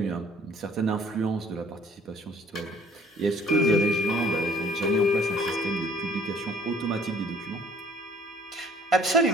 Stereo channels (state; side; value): normal; both; correlation 0.56